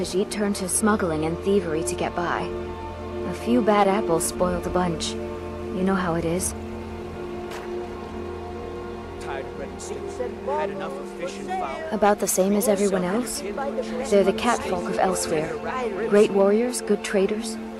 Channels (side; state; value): both; identical; correlation 1.00